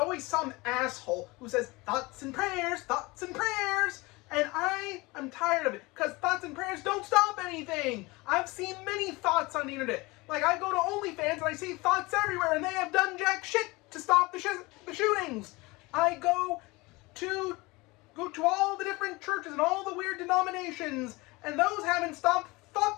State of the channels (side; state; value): right; quieter; 23.3 dB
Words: some asshole who says, thoughts and prayers, thoughts and prayers. And I am tired of it, because thoughts and prayers don't stop anything. I've seen many thoughts on the internet. Like, I go to OnlyFans and I see thoughts everywhere, and they have done jack shit to stop the shootings. I go to all the different churches and all the weird denominations, and those haven't stopped